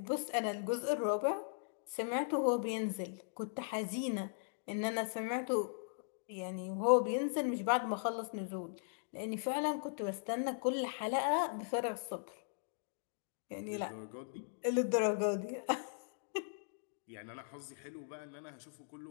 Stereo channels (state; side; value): silent; right; digital silence